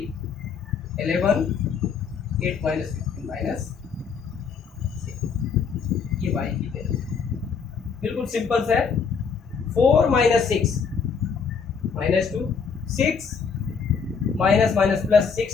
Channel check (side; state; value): right; quieter; 6.0 dB